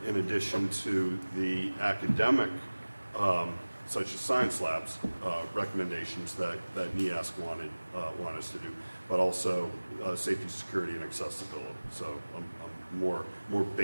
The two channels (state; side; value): inverted; both; correlation -1.00